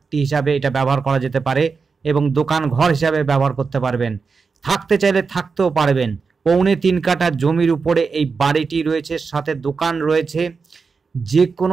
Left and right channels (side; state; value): left; quieter; 4.9 dB